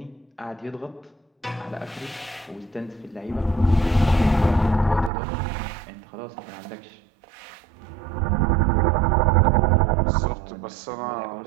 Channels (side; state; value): left; drops out; at 5.1 s